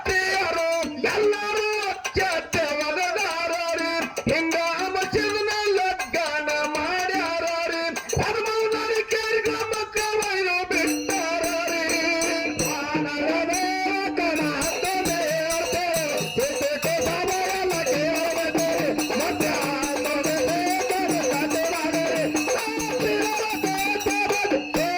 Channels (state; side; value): identical; both; correlation 1.00